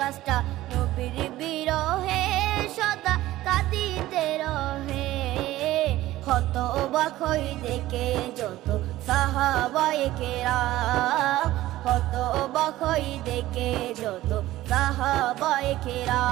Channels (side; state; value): left; quieter; 15.8 dB